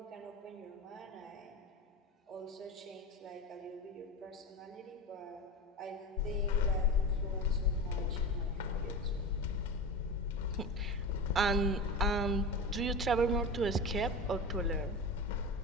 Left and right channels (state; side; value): normal; both; correlation 0.26